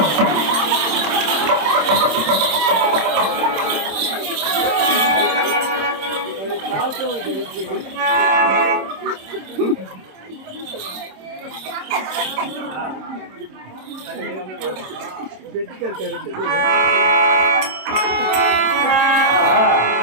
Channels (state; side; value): late; left; 26 ms